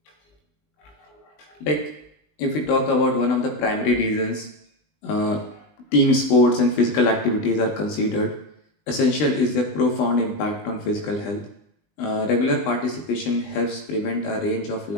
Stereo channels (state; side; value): late; right; 20 ms